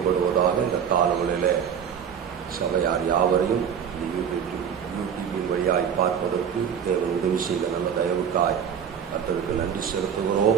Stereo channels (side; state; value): left; quieter; 7.9 dB